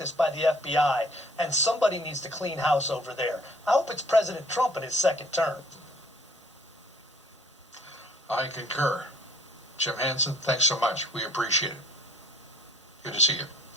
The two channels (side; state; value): both; normal; correlation 0.56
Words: by the FBI, and somebody needs to clean house over there. I hope it's President Trump in his second term. I concur. Jim Hansen, thanks so much. We appreciate it. Good to see you.